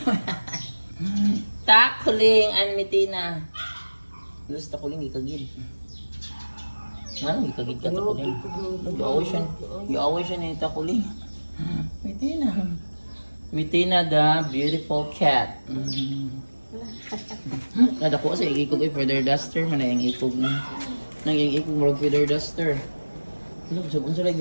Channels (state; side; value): inverted; both; correlation -1.00